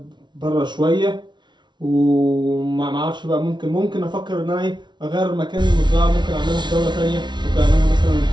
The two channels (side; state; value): left; late; 0.22 ms